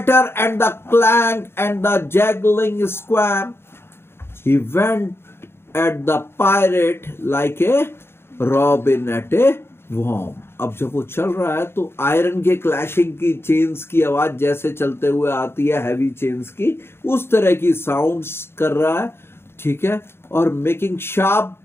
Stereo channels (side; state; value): right; late; 0.12 ms